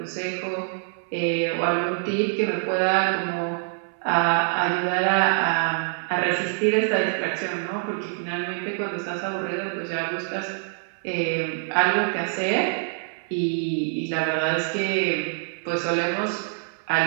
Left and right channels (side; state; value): left; silent; 58 dB below the other